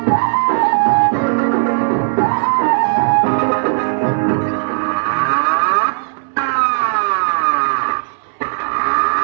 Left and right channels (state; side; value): silent; left; 69 dB below the other